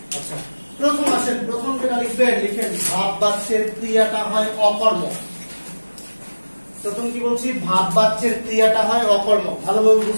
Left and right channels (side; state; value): both; inverted; correlation -1.00